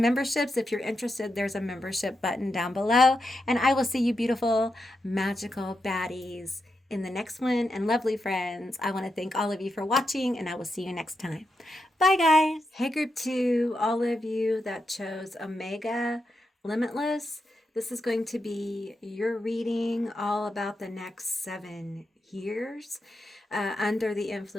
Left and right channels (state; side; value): normal; both; correlation 0.86